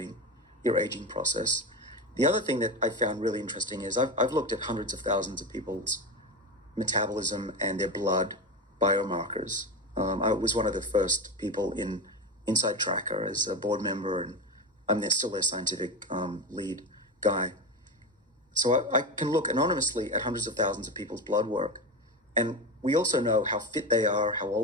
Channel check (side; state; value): both; normal; correlation 0.19